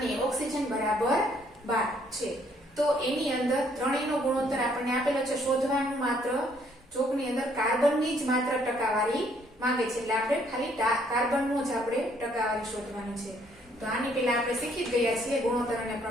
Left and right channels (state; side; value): normal; both; correlation 0.66